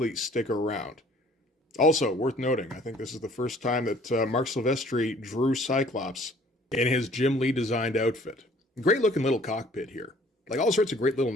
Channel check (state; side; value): normal; both; correlation 0.55